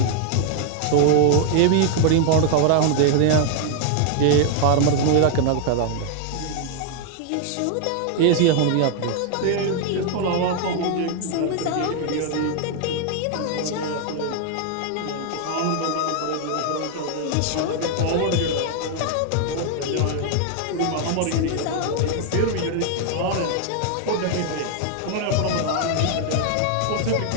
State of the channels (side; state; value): both; different; correlation 0.00